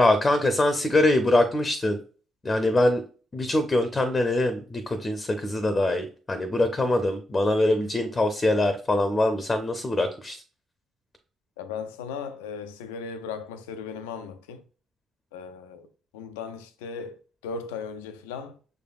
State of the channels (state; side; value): normal; both; correlation 0.85